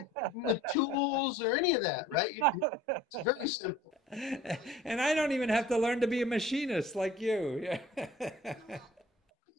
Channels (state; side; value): normal; both; correlation 0.50